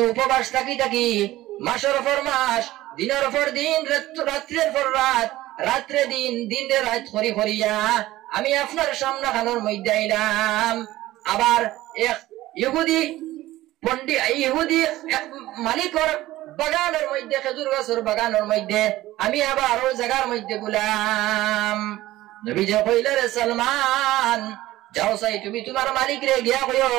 উপবাস থাকি মাসের পর মাস দিনের পর দিন রাত্রের পর রাত রাত্রে দিন দিনে রাত করিয়া আমি আপনার সামনে খানোর মধ্যে আইলাম আবার এক ইহুদি মালিকর বাগানের মধ্যে খেজুর গাছের বাগানের মধ্যে আমি আবার ওই জায়গার মধ্যে গুলাম নবীজি কইলেন রে সালমান যাও সাই তুমি তোমার মালিক রে গিয়া কইও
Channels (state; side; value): quieter; left; 16.3 dB